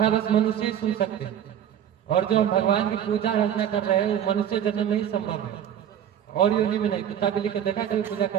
बस मनुष्य ही सुन सकते हैं। और जो हम भगवान की पूजा अर्चना कर रहे हैं वो मनुष्य जन्म में ही संभव है, और योनि में नहीं। कुत्ता बिल्ली को देखा कभी पूजा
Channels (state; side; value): quieter; left; 9.9 dB